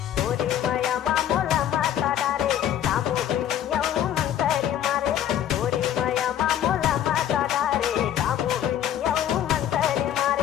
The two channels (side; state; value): right; quieter; 10.7 dB